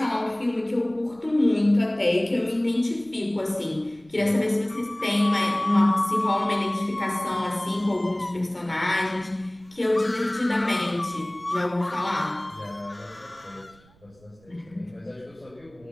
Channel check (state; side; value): noise; right; rumble, 28 dB below the sound